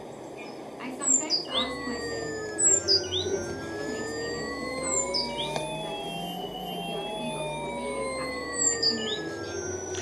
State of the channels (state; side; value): identical; both; correlation 1.00